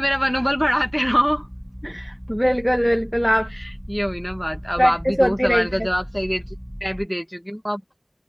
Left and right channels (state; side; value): identical; both; correlation 1.00